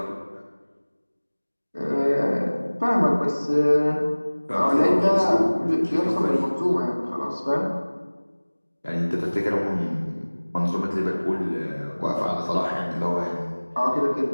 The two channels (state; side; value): inverted; both; correlation -1.00